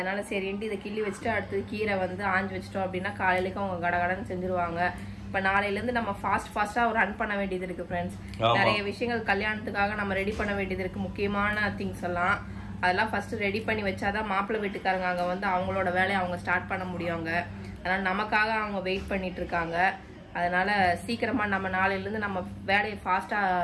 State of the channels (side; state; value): both; identical; correlation 1.00